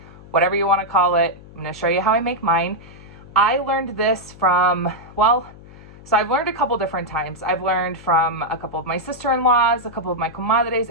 whatever you want to call it. I'm going to show you how I make mine. I learned this from, so I've learned a couple different times. I've learned from a couple of my sister-in-laws, a couple of my comadres,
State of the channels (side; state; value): left; noise; hum, 20 dB below the sound